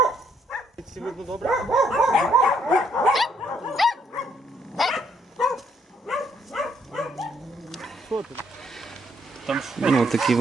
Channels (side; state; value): both; normal; correlation 0.70